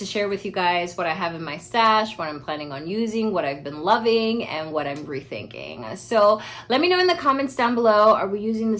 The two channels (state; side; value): identical; both; correlation 1.00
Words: share with you guys what I have in my stash, what I'm planning on using, what I've been loving, and what I'm rethinking. So let me know in the comments down below, are we using the